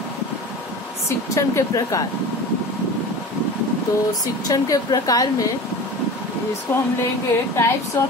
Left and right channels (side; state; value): both; normal; correlation 0.35